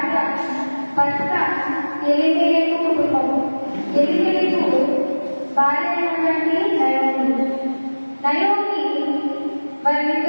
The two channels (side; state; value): both; inverted; correlation -1.00